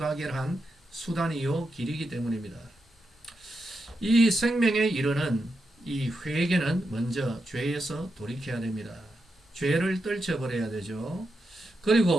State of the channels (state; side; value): normal; both; correlation 0.86